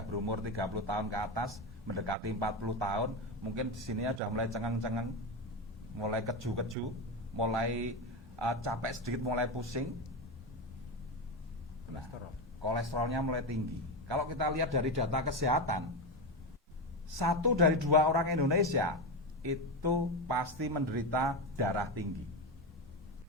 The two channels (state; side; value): normal; both; correlation 0.15